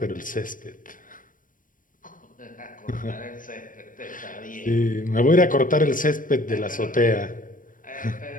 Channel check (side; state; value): right; late; 0.39 ms